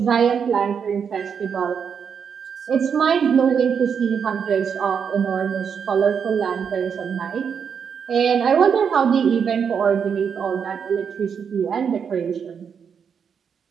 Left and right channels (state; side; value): quieter; left; 6.9 dB